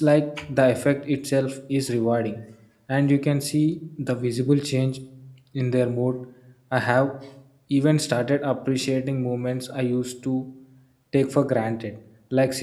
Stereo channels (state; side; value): identical; both; correlation 1.00